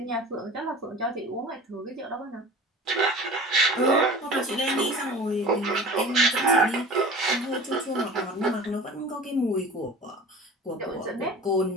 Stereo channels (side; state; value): both; normal; correlation 0.39